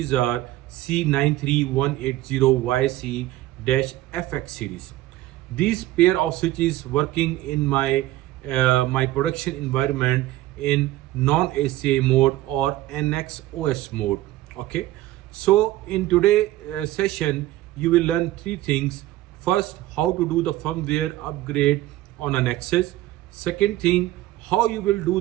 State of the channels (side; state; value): left; quieter; 16.0 dB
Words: are C9300YC-FX series. These pair of switches working in my production environment in non-ACA mode or nxos mode. Okay, so in today session you will learn three things. First, how to do the firmware upgrade on a Nexus. Second thing, how you will do